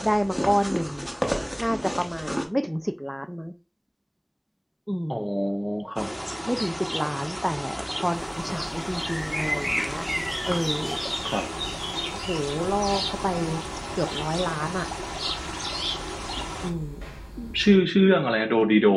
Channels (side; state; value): both; identical; correlation 1.00